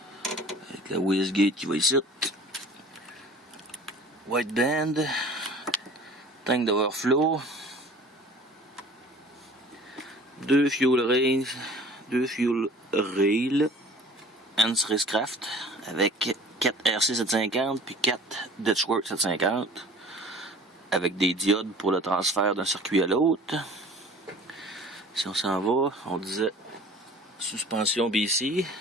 Avec la wastegate qui va ici. White band. Tank d'overflow. 2 fuel rails. Hans Racecraft avec 4 RC 750 puis 4 Ditchworks 750 avec des diodes pour le transfert d'un circuit à l'autre. Si on s'en va, on disait suspension BC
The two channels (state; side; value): normal; both; correlation 0.46